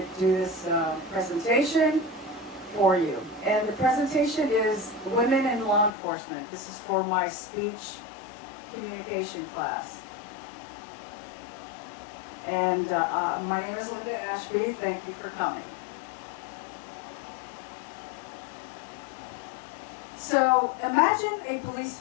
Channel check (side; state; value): right; drops out; at 5.9 s